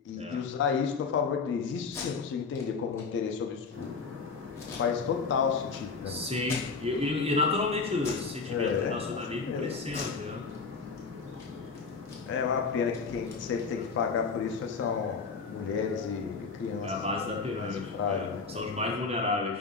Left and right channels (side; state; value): right; quieter; 4.9 dB